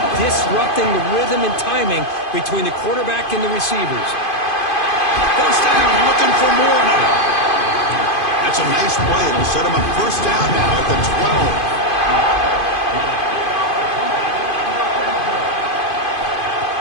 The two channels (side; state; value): right; late; 2.5 ms